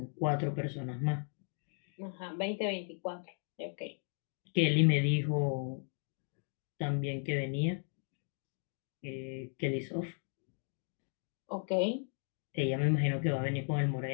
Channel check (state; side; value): silent; right; 54 dB below the other